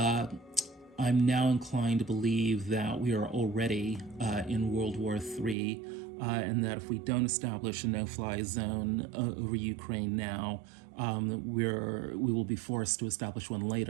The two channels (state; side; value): drops out; left; at 5.6 s